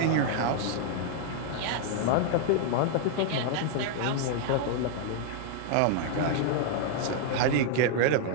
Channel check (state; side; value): different; both; correlation 0.00